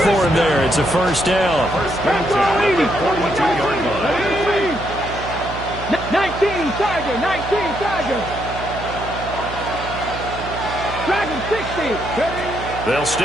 him there. It's a first down. 19, Tiger, 19, Tiger. Dragon 60. They'll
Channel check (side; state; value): right; noise; hum, 10 dB below the sound